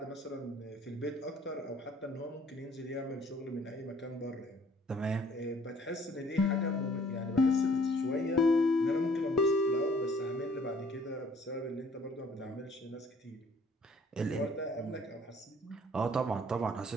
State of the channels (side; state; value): both; normal; correlation 0.57